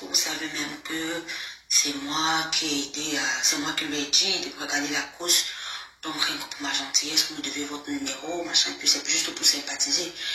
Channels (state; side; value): identical; both; correlation 1.00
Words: vous savez même que c'est moi qui ai aidé, c'est moi qui lui ai dit de regarder la course Donc, rien que pour ma gentillesse, vous me devez votre numéro, machin, puis c'est juste pour sympathiser.